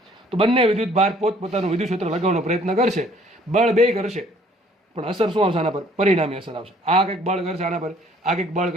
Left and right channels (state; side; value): normal; both; correlation 0.58